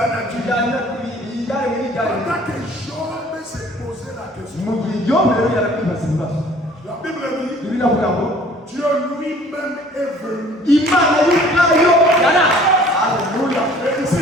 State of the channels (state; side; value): normal; both; correlation 0.53